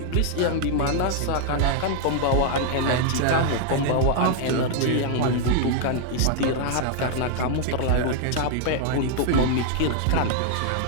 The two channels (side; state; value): both; different; correlation 0.00